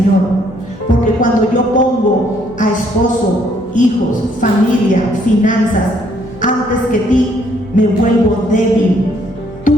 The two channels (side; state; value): both; normal; correlation 0.67